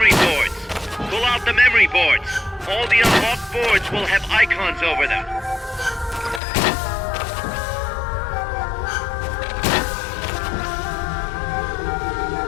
boards. Pull out the memory boards. All the unlocked boards will have icons over them.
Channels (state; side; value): drops out; right; at 6.4 s